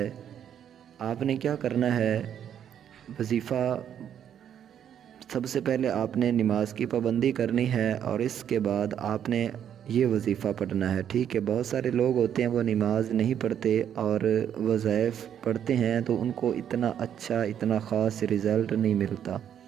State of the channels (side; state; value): left; quieter; 9.3 dB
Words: آپ نے کیا کرنا ہے؟ وظیفہ سب سے پہلے آپ نے نماز کی پابندی کرنی ہے، اور اس کے بعد آپ نے یہ وظیفہ پڑھنا ہے، ٹھیک ہے؟ بہت سارے لوگ ہوتے ہیں وہ نماز نہیں پڑھتے اور وظائف پڑھتے ہیں تو ان کو اتنا اچھا، اتنا خاص رزلٹ نہیں ملتا۔